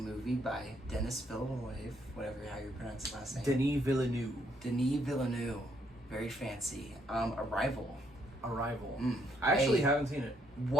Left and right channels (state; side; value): normal; both; correlation 0.69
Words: by Denis Villeneuve, how you pronounce his last name. Denis Villeneuve. Denis Villeneuve. Very fancy. Arrival. I actually haven't seen it.